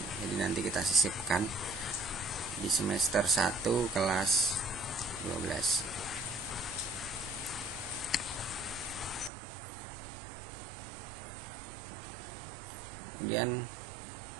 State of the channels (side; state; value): left; drops out; at 9.3 s